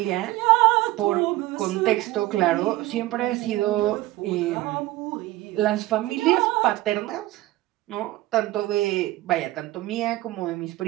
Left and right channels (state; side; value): quieter; left; 17.5 dB